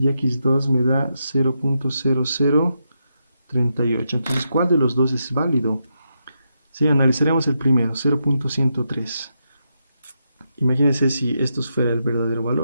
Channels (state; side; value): inverted; both; correlation -0.84